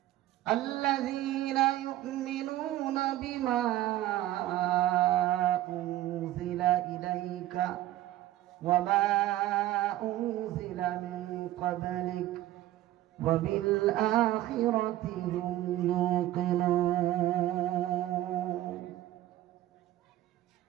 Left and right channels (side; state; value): left; quieter; 14.7 dB